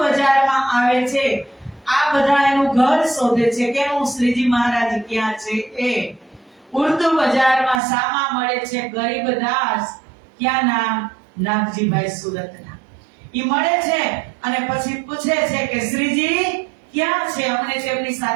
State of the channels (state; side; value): drops out; left; at 7.8 s